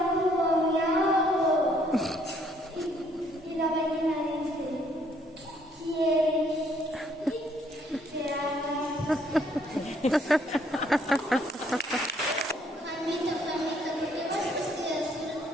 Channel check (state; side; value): normal; both; correlation 0.66